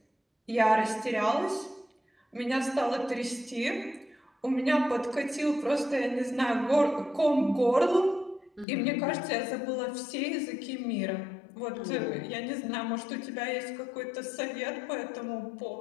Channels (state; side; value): drops out; right; at 8.7 s